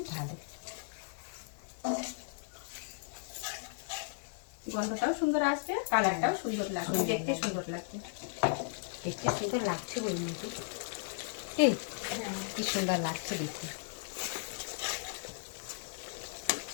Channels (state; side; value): silent; right; digital silence